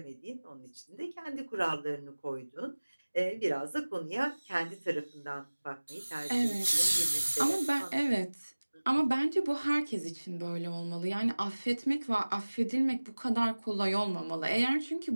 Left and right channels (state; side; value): inverted; both; correlation -1.00